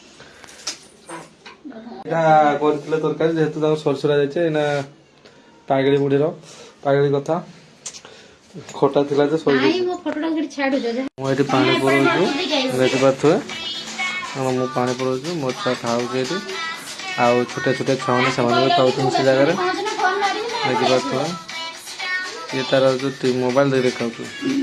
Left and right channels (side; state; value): both; identical; correlation 1.00